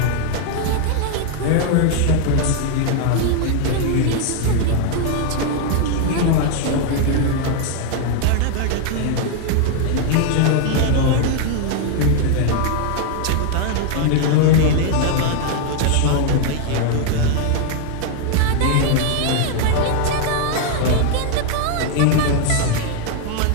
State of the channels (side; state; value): both; different; correlation 0.00